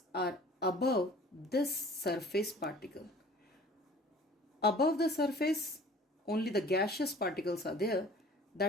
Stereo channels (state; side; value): normal; both; correlation 0.48